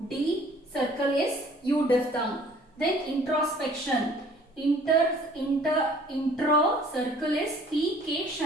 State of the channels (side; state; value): both; normal; correlation 0.54